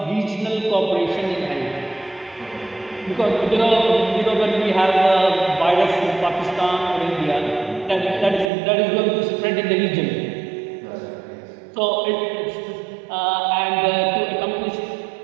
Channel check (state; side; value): drops out; left; at 8.5 s